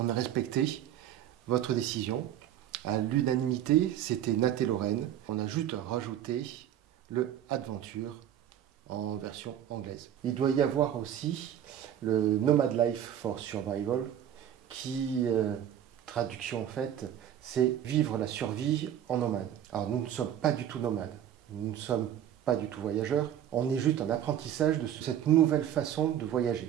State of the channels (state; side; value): quieter; left; 10.6 dB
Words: a respecté votre décision. À l'unanimité, c'était Nat et Lorraine. On a juste rajouté le Adventure en version anglaise. Il doit y avoir aussi le Nomad Life for Survival qui traduction en fait, c'est vivre la survie en nomade. Alors nous ne sommes pas du tout nomades, nous ne sommes pas du tout voyageurs, on est juste en apprentissage de cette nouvelle façon de